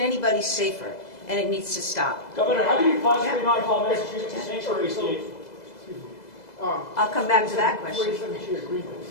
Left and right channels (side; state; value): right; late; 2.0 ms